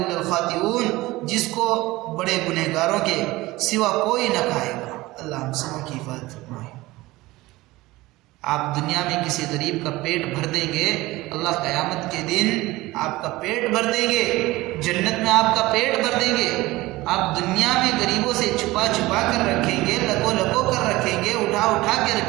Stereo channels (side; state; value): left; quieter; 19.4 dB